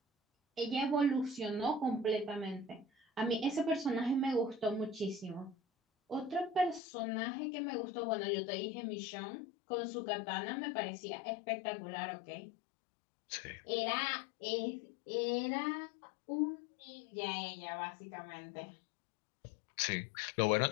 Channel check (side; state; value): right; drops out; at 6.8 s